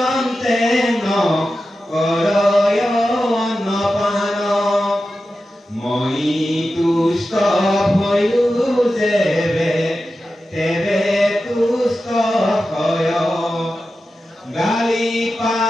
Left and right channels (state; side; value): normal; both; correlation 0.92